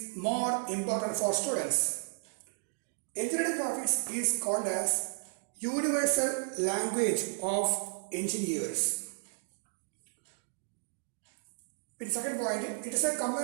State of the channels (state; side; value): silent; left; digital silence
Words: more important for students? Engineering graphics is called as universal language of engineers. In second point, it is a